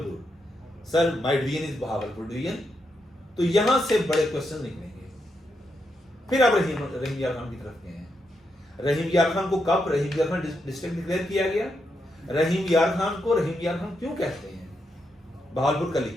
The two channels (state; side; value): normal; both; correlation 0.82